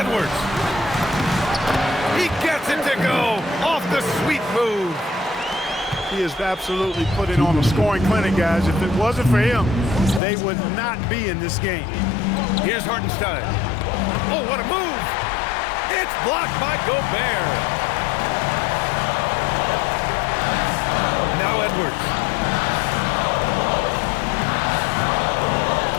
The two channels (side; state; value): right; drops out; at 10.2 s